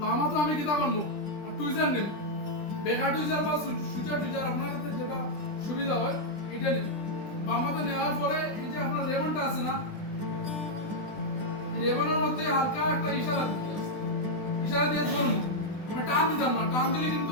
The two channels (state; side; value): late; right; 20 ms